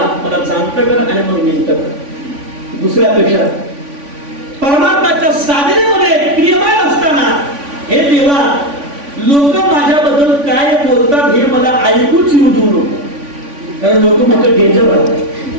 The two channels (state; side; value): late; left; 3.5 ms